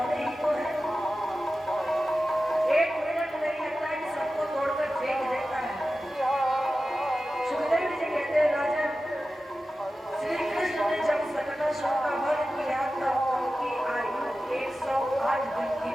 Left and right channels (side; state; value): both; normal; correlation 0.94